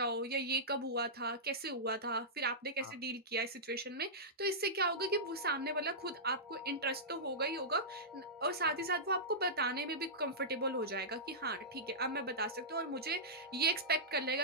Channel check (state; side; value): normal; both; correlation -0.15